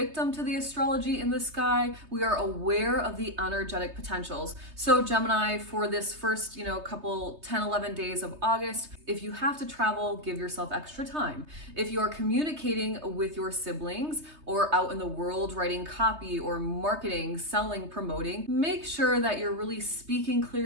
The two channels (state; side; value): late; left; 3.3 ms